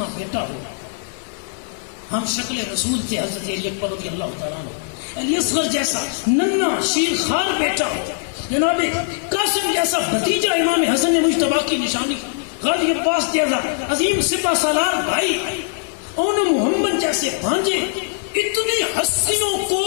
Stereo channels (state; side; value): silent; right; digital silence